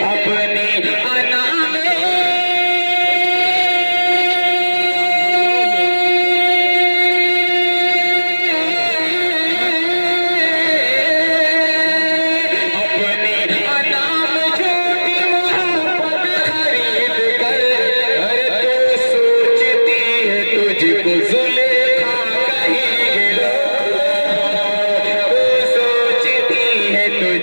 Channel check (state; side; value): inverted; both; correlation -1.00